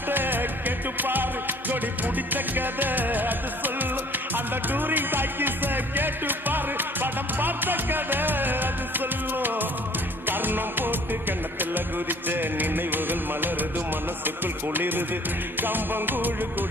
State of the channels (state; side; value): normal; both; correlation 0.54